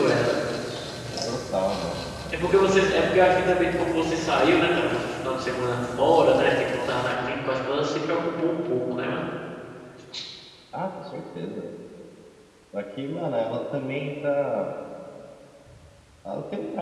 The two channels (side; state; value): both; identical; correlation 1.00